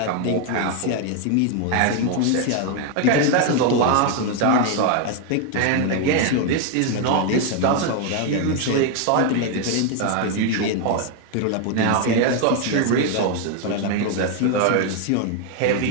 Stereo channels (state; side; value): different; both; correlation 0.01